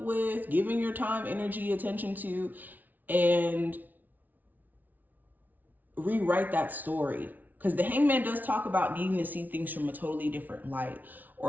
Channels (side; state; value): left; late; 0.081 ms